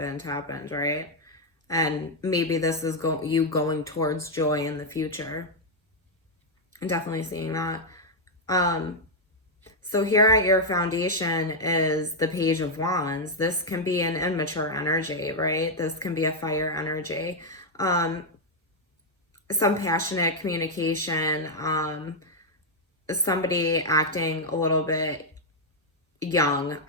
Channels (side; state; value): both; normal; correlation -0.01